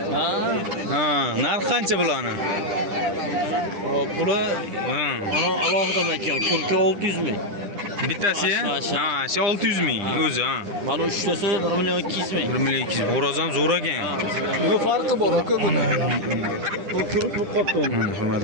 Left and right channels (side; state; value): left; late; 9.9 ms